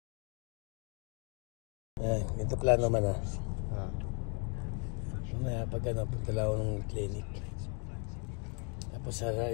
Ito plano naman Mamaya pag punta lang ako ng clinic. Tapos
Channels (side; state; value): right; quieter; 37.1 dB